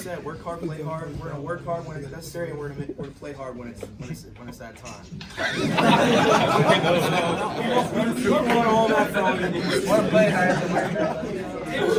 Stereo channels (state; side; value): identical; both; correlation 1.00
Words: work hard, play hard. We're gonna work hard when it's necessary, and we're gonna play hard when it's that time. We want all that from you. Want to play hard.